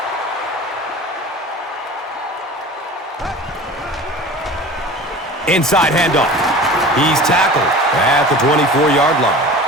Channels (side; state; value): both; normal; correlation 0.38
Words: Inside handoff. He's tackled at the 24-yard line.